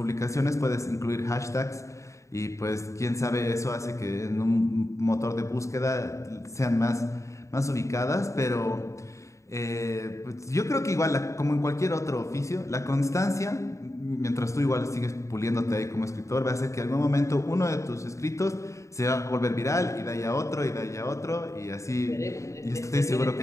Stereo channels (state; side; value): late; right; 0.15 ms